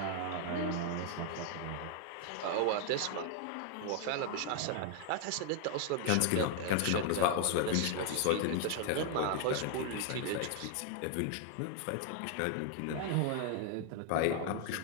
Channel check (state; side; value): different; both; correlation 0.00